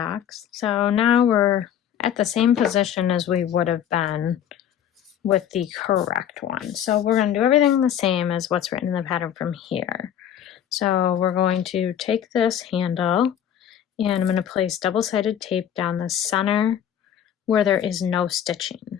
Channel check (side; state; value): right; quieter; 9.7 dB